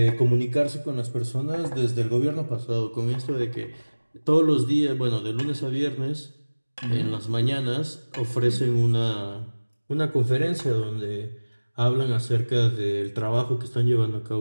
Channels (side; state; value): both; inverted; correlation -1.00